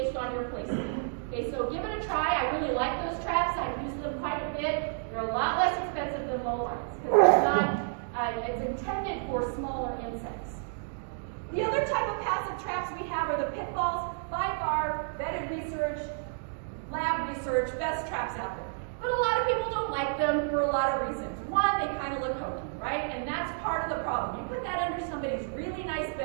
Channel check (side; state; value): left; silent; digital silence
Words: on your placement. Okay, so give it a try. I really like those traps. I've used them quite a bit. They're a lot less expensive than low lines because it's intended for smaller insects. The other type of passive traps we have are the pitfalls. By far, vetted research, lab research, best traps out there. But a lot of people don't like them for a lot of reasons. One, they kind of look hokey, right? And that's part of the problem. You put that under somebody's really nice